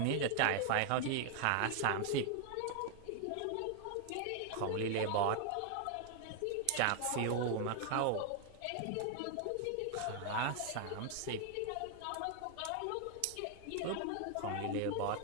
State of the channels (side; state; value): both; different; correlation 0.00